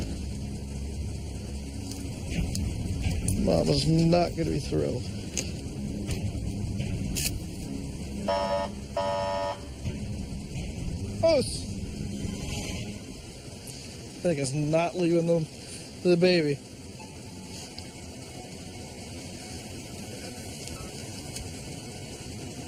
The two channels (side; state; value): both; identical; correlation 1.00